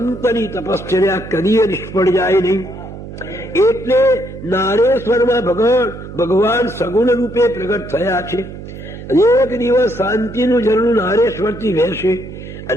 તપશ્ચર્યા કદીએ નિષ્ફળ જાય નહીં. એટલે નારેશ્વરમાં ભગવાન સગુણ રૂપે પ્રગટ થયા છે. એક દિવસ શાંતિનું ઝરણું નારેશ્વરથી વહેશે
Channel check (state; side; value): noise; right; hum, 12 dB below the sound